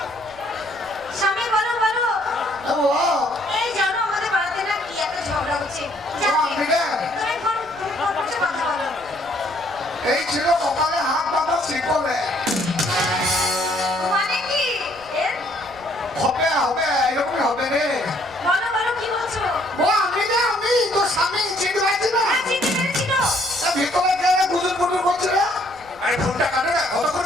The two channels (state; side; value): noise; right; rumble, 23 dB below the sound